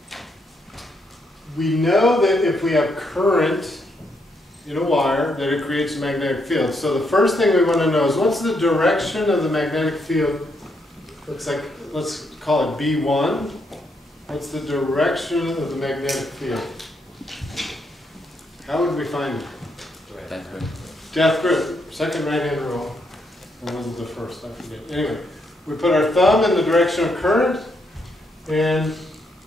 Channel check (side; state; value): both; normal; correlation 0.77